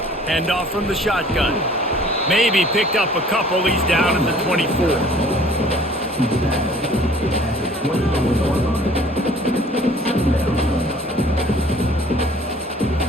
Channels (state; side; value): normal; both; correlation 0.52